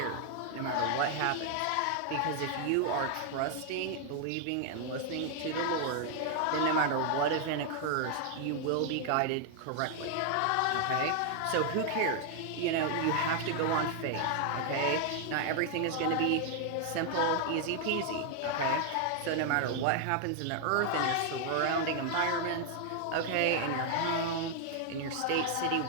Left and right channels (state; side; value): different; both; correlation 0.00